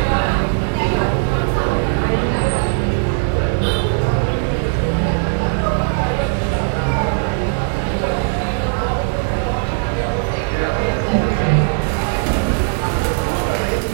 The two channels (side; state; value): left; silent; 67 dB below the other